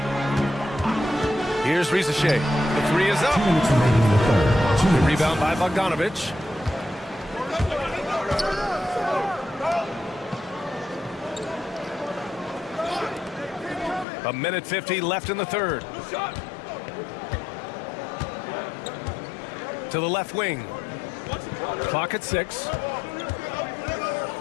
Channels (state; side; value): drops out; right; at 14.1 s